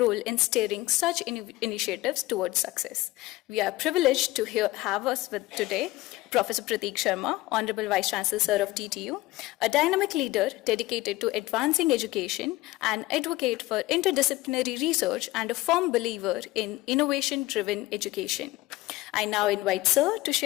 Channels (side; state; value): right; quieter; 18.6 dB